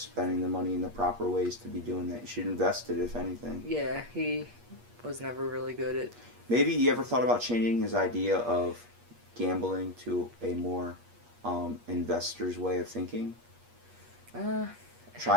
the money in the proper ways to be doing that. You should invest it, if anything. Yeah, he was never really good at... Maybe you ever thought about changing his idea of gambling to a more investor's way of thinking?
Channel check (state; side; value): late; left; 8.4 ms